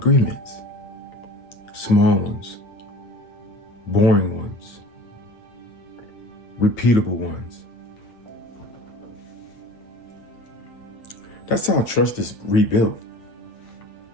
Small ones, boring ones, repeatable ones. That's how trust is rebuilt.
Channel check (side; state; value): right; late; 8.8 ms